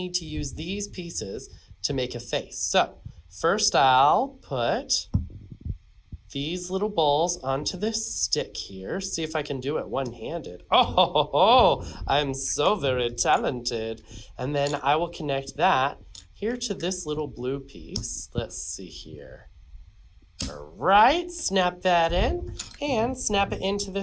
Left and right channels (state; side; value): identical; both; correlation 1.00